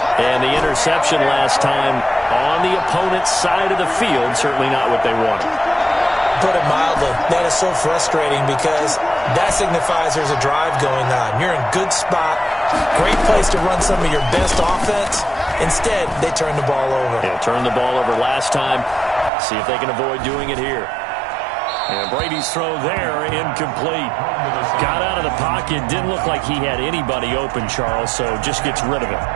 And the interception last time on the opponent's side of the field, certainly not what they wanted. Put it mildly, that is so frustrating because that signifies there's a drive going on. You're in good spot, great place to run some of your best offense. Instead, they turn the ball over. Yeah, turned the ball over last time. See if they can avoid doing it here. And Brady's throw there, incomplete. Got out of the pocket, didn't look like he had anybody open, Charles, so just gets rid of it.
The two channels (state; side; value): drops out; left; at 19.3 s